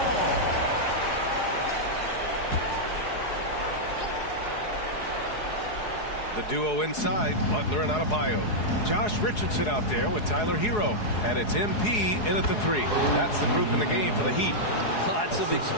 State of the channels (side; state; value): right; late; 4.8 ms